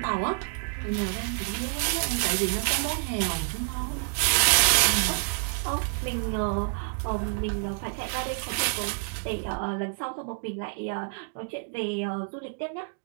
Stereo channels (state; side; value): silent; left; 59 dB below the other